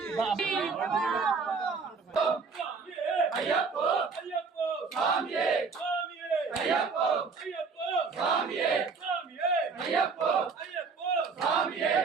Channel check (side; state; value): left; quieter; 4.9 dB